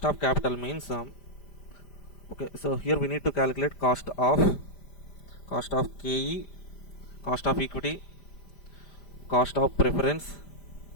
of capital means, okay, so here we need to calculate cost of KE, cost of equity, cost of preference,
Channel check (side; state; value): right; late; 5.0 ms